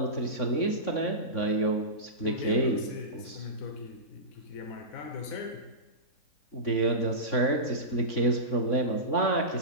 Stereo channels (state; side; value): late; right; 3.6 ms